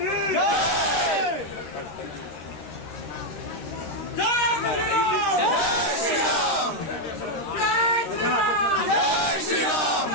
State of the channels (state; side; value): late; right; 13 ms